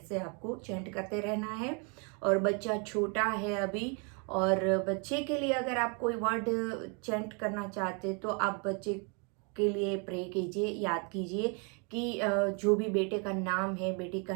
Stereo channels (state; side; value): quieter; left; 35.5 dB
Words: आपको चैंट करते रहना है। और बच्चा छोटा है अभी, और बच्चे के लिए अगर आप कोई वर्ड चैंट करना चाहते तो आप बच्चे के लिए प्रे कीजिए, याद कीजिए कि जो भी बेटे का नाम है, बेटी का